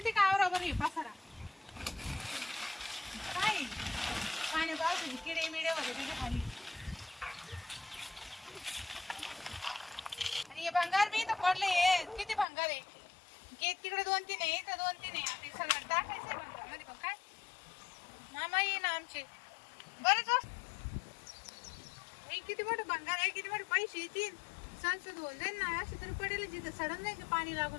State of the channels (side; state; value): right; drops out; at 12.5 s